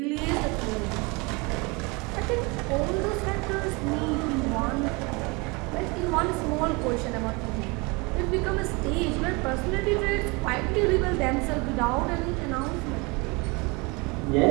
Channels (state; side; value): quieter; left; 27.6 dB